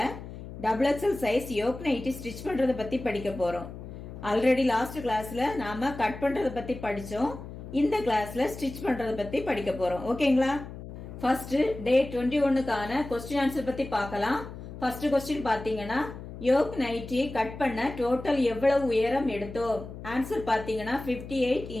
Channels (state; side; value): noise; left; hum, 12 dB below the sound